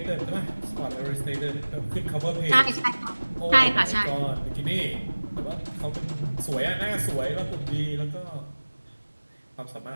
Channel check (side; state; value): both; inverted; correlation -1.00